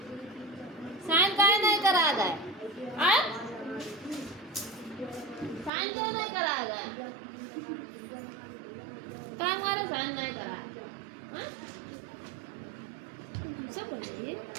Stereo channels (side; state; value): left; drops out; at 5.7 s